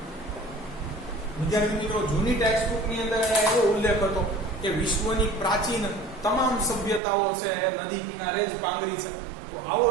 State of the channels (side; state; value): left; drops out; at 7.0 s